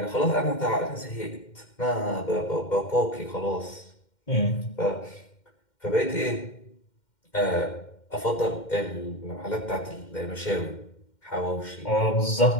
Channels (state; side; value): late; right; 2.1 ms